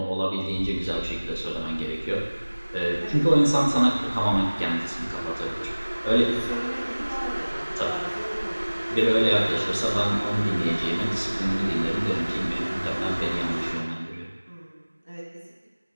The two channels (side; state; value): both; inverted; correlation -1.00